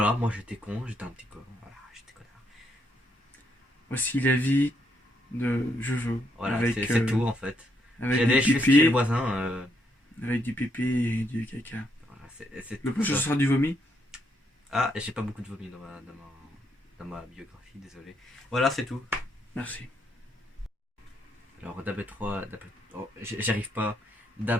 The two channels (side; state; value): both; normal; correlation 0.75